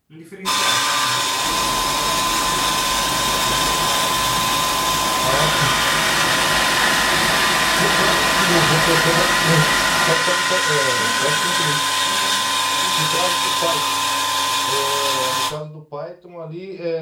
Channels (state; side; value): identical; both; correlation 1.00